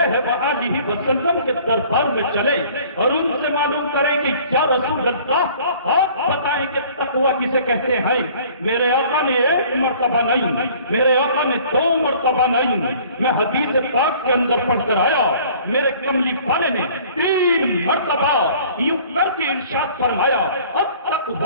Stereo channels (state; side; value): inverted; both; correlation -0.52